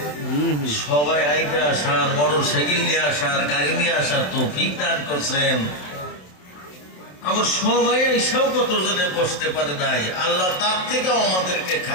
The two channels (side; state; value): right; late; 27 ms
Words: সবাই আইকে আসার, মোটর সাইকেল নিয়ে আসার, গাড়ি নিয়ে আসার তৌফিক দান করছেন। আবার সবাই এসেও কতজনে বসতে পারে নাই, আল্লাহ তার থেকেও আমাদেরকে